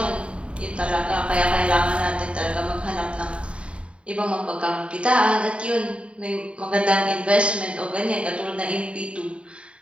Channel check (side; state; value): left; late; 0.058 ms